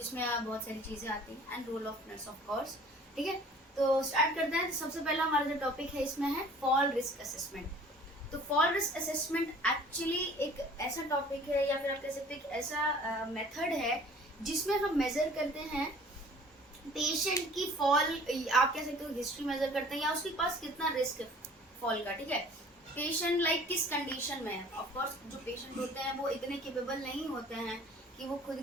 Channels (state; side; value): normal; both; correlation 0.49